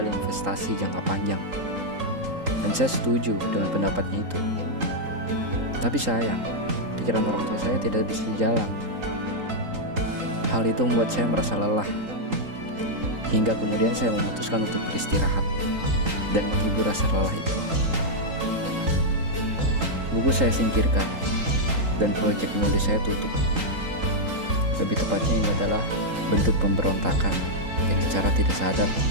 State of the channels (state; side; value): late; left; 3.8 ms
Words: investasi jangka panjang, dan saya setuju dengan pendapatnya itu. Tapi sayang, pikiran orang tua saya tidak bisa jalan. Hal itu membuat saya merasa lelah, hingga kemudian saya memutuskan untuk beristirahat dan menghibur rasa lelah itu. Buku saya singkirkan, dan proyek menulis saya tutup. Lebih tepatnya ini adalah bentuk pemberontakan yang secara tidak sadar